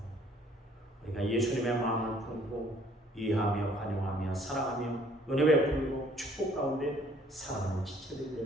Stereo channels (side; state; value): both; normal; correlation 0.60